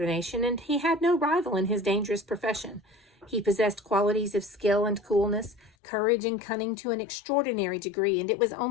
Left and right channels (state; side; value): drops out; right; at 5.7 s